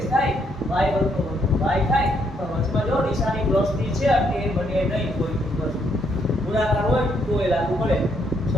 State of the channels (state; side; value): normal; both; correlation 0.73